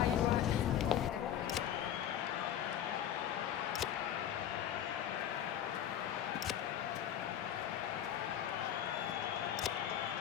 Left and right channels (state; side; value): quieter; right; 10.4 dB